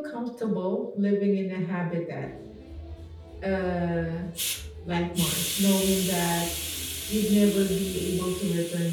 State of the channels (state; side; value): identical; both; correlation 1.00